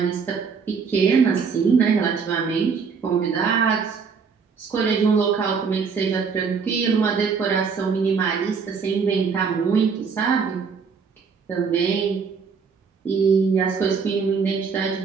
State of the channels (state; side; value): quieter; left; 5.7 dB